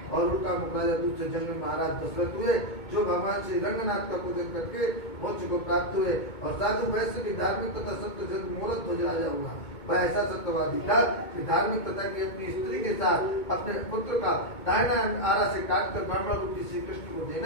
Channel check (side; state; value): right; late; 2.2 ms